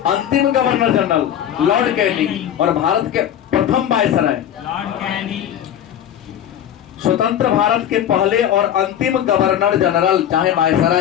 अंतिम गवर्नर जनरल लॉर्ड कैनिंग, और भारत के प्रथम वायसराय स्वतंत्र भारत के पहले और अंतिम गवर्नर जनरल चाहे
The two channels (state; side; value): quieter; right; 10.3 dB